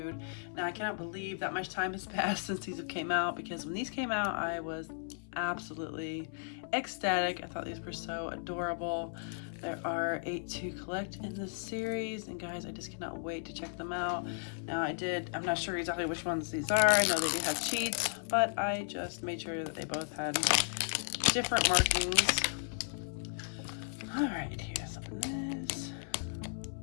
Now I cannot believe that much time has passed since these have came out, because when these came out I was absolutely ecstatic. I thought these were so adorable. There are 8 to collect in this series, and guys, I just cannot wait to check them out. Now I'm not sure exactly which ones these are. I know they do have cheats, but I just made sure that they both had different markings. All right, here's open this.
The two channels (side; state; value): right; silent; 54 dB below the other